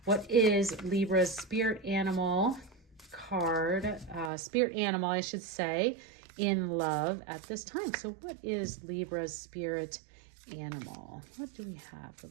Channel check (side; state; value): left; drops out; at 4.3 s